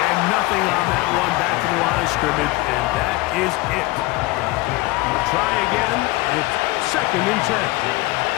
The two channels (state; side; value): quieter; right; 20.4 dB